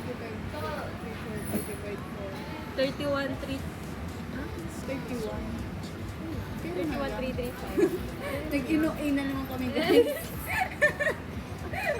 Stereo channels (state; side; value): identical; both; correlation 1.00